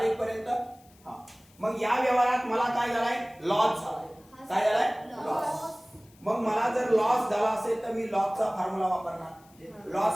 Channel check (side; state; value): left; noise; hiss, 29 dB below the sound